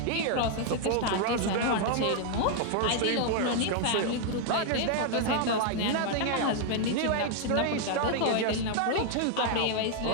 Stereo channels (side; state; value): both; different; correlation 0.00